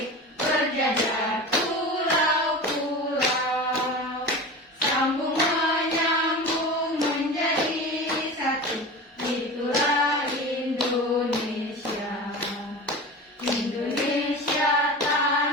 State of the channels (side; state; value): both; normal; correlation 0.32